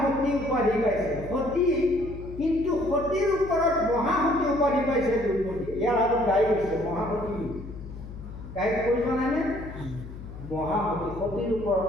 উপাধি পাইছে সতী, কিন্তু সতীৰ ওপৰত মহাসতী উপাধি পাইছে দ্ৰৌপদী। ইয়াৰ আগত গাই গৈছে মহাসতী, গাই কৈ জানানে? মহাসতী, সতীৰ ওপৰত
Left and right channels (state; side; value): noise; left; hum, 12 dB below the sound